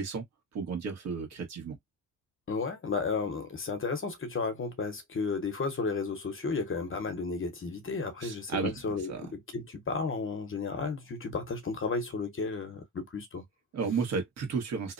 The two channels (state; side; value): normal; both; correlation 0.17